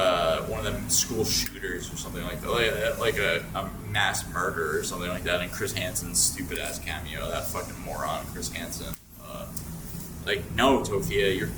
one of them school shooters or something like that, like a mass murder or something like that, and Chris Hansen's stupid ass Cameo, that fucking moron Chris Hansen. No, Tophia,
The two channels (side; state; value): both; identical; correlation 1.00